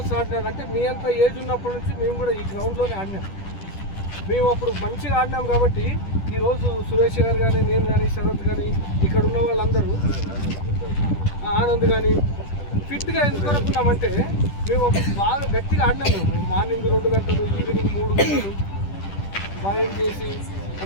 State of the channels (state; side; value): late; right; 10 ms